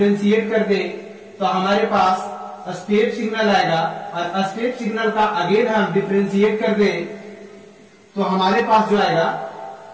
कर दे तो हमारे पास स्टेप सिग्नल आएगा। और स्टेप सिग्नल का अगेन हम डिफरेंशिएट कर दे तो हमारे पास जो आएगा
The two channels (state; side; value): identical; both; correlation 1.00